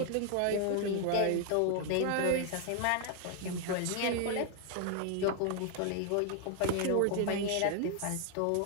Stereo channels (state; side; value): different; both; correlation 0.00